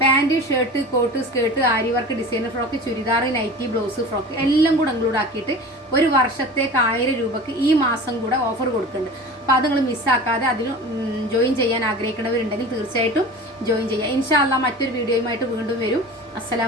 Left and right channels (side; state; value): both; normal; correlation 0.36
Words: Pant, shirt, coat, skirt, aari work, designer frock, churidar, nightie, blouse, frock എല്ലാം കൂടെ ഇൻക്ലൂഡ് ആക്കിയിട്ട് ഒരു വർഷത്തേക്ക് 1000 രൂപയ്ക്ക് ഈ മാസം കൂടെ ഓഫർ കൊടുക്കുന്നുണ്ട്. അപ്പോൾ അത് നിങ്ങൾ മിസ്സാക്കാതെ അതിൽ ജോയിൻ ചെയ്യാൻ ആഗ്രഹിക്കുന്നവരുണ്ടെങ്കിൽ തീർച്ചയായിട്ടും ജോയിൻ ചെയ്യുക. ഇൻഷാ അല്ലാഹ് മറ്റൊരു വീഡിയോയുമായിട്ട് വീണ്ടും വരും.